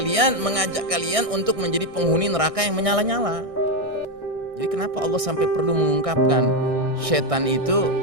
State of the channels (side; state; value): left; late; 1.6 ms